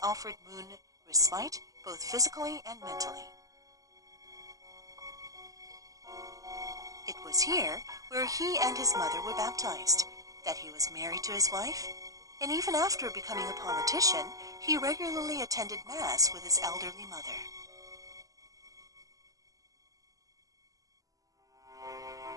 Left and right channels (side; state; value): left; late; 0.17 ms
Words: offered Moon respite both physically and mentally. It was here where he and his mother were baptized, that he was married to his wife, and even after becoming a politician, he regularly attended Mass with his elderly mother.